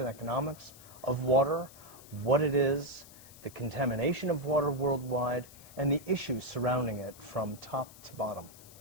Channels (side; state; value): left; noise; hiss, 20 dB below the sound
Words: economics of water, what it is, the contamination of water worldwide, and the issues surrounding it from top to bottom.